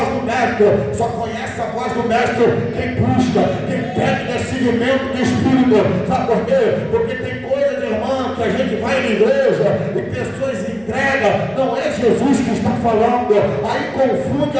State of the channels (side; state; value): right; noise; rumble, 27 dB below the sound